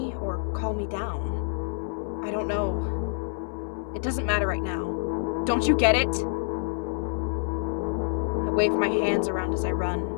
or calm me down? I don't know. It doesn't matter right now. Don't you get it? I wave my hands around as I run,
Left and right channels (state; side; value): silent; right; 60 dB below the other